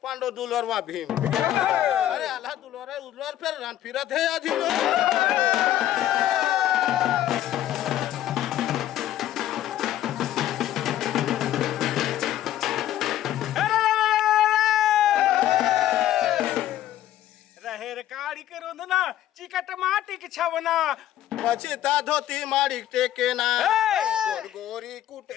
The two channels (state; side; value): quieter; right; 12.6 dB